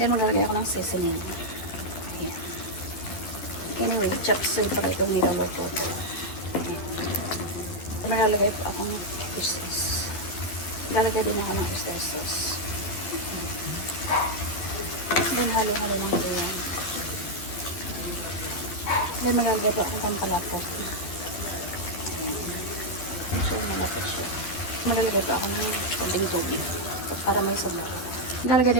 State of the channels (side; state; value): right; late; 11 ms